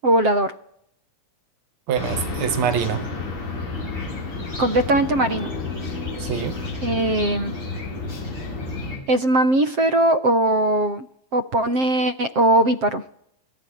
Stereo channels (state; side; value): late; left; 7.6 ms